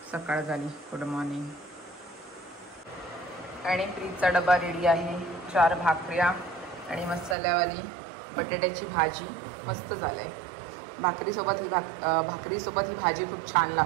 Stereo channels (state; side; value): drops out; left; at 7.4 s